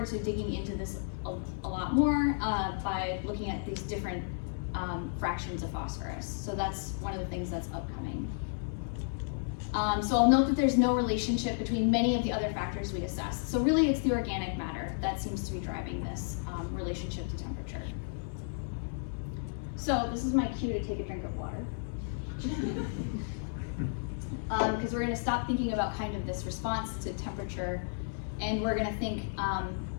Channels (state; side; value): silent; right; digital silence